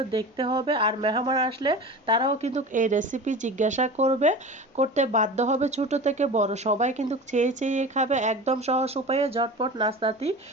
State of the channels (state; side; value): normal; both; correlation 0.33